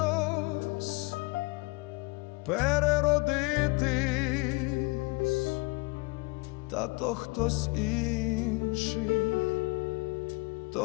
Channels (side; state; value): right; quieter; 26.9 dB